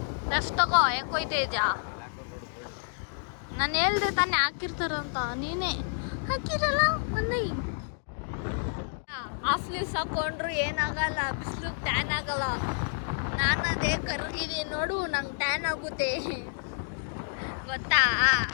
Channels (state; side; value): silent; right; digital silence